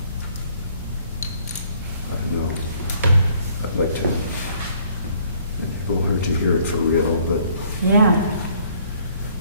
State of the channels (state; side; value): inverted; both; correlation -0.61